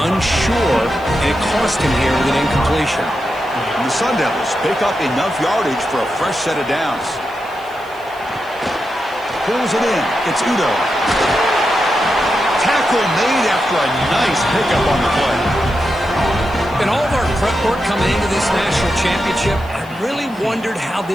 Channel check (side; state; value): left; noise; hiss, 26 dB below the sound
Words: unsure, and it cost him here with an incompletion. And the Sun Devils pick up enough yardage for a fresh set of downs. Pulls it in. It's Udo. Tackle made after a nice pickup on the play. In all of our prep work coming into this national championship, I really wondered how